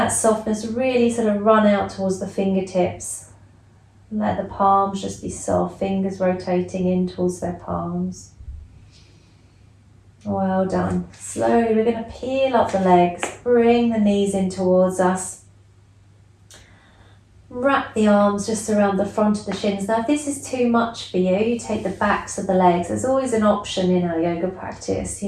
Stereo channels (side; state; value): both; identical; correlation 1.00